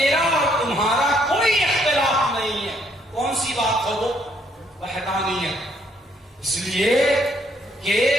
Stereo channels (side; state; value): both; normal; correlation 0.69